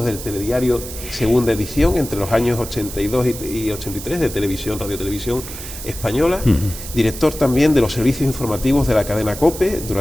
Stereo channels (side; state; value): right; noise; hiss, 11 dB below the sound